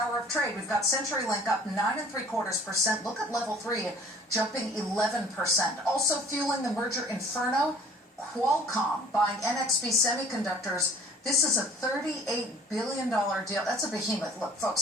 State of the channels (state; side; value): normal; both; correlation 0.49